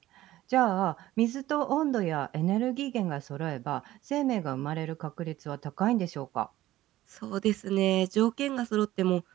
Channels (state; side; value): quieter; left; 15.3 dB